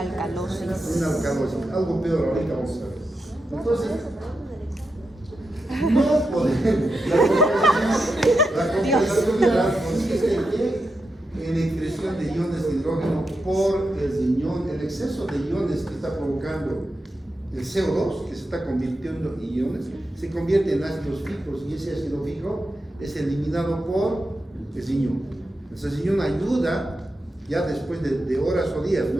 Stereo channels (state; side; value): normal; both; correlation 0.87